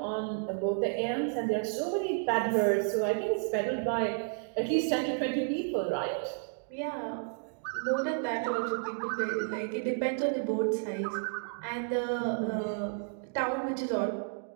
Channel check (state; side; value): silent; left; 57 dB below the other